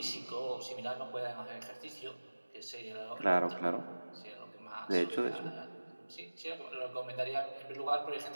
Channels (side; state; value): both; inverted; correlation -1.00